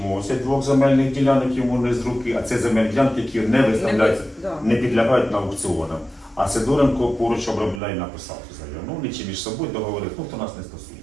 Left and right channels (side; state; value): left; drops out; at 7.8 s